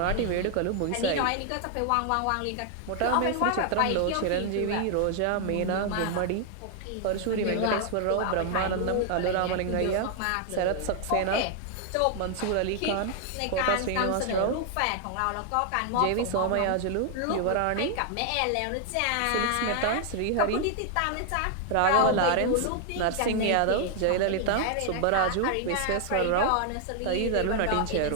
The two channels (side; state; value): both; different; correlation 0.00